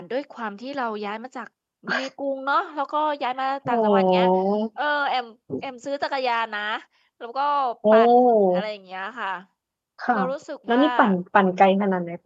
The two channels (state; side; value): identical; both; correlation 1.00